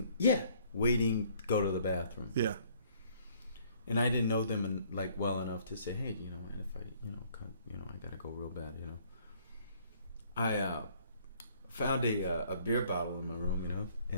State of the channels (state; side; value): inverted; both; correlation -0.61